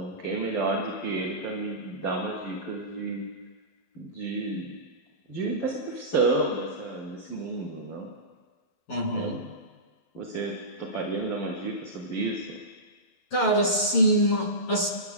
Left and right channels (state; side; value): late; right; 12 ms